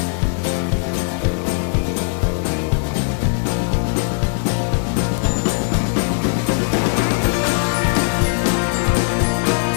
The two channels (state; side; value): silent; right; 66 dB below the other